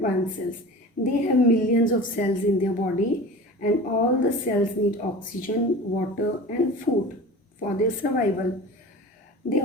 cells. They have millions of cells in their body, and all the cells need oxygen, water and food for their survival. They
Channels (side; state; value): both; normal; correlation 0.36